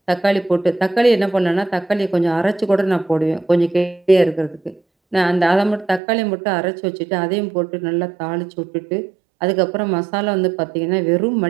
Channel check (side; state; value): left; drops out; at 6.0 s